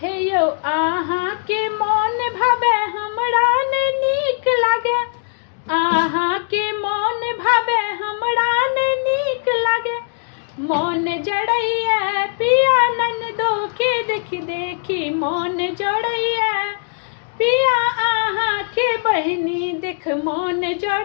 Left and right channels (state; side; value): silent; right; digital silence